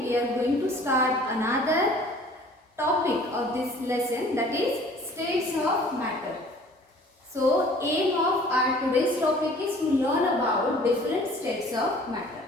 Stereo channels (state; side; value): normal; both; correlation 0.50